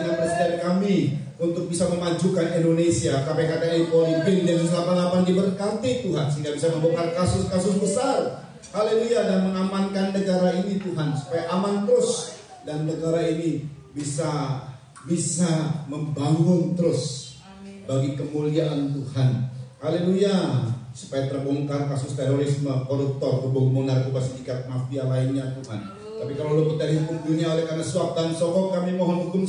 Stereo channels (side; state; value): both; identical; correlation 1.00